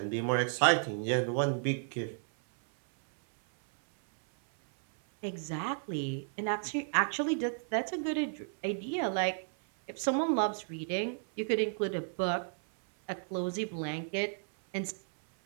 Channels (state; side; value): silent; left; 56 dB below the other